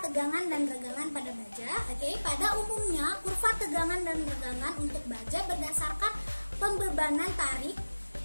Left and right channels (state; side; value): inverted; both; correlation -1.00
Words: tegangan dan regangan pada baja. Pada umumnya kurva tegangan dan regangan untuk baja berdasarkan pembebanan tarik.